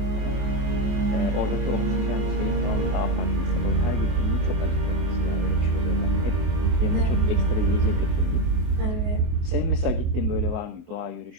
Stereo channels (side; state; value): left; late; 24 ms